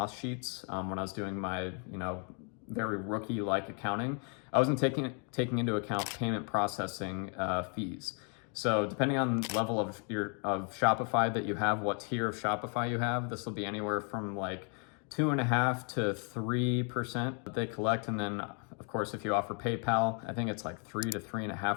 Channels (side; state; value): right; quieter; 39.3 dB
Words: sheets, when I was doing my, very rookie-like accounting, I wasn't taking into account payment processing fees. So depending on the level of Shopify that you have, what tier of Shopify you have, this will be anywhere from like 2.5% to 3% that they collect. And then of course, if you offer PayPal, I think it's like 3 to